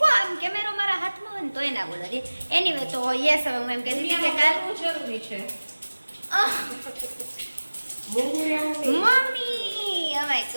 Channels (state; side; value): inverted; both; correlation -1.00